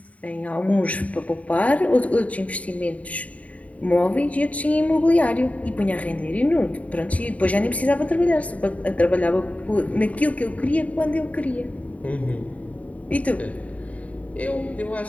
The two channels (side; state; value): right; late; 0.068 ms